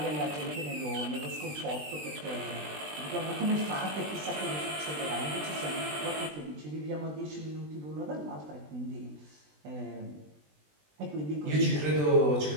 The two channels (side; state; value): left; late; 20 ms